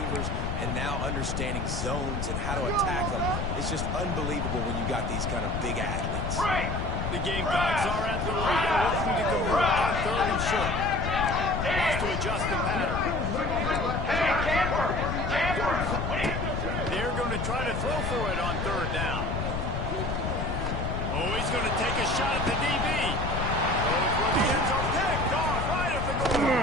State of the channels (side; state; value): left; noise; rumble, 2 dB below the sound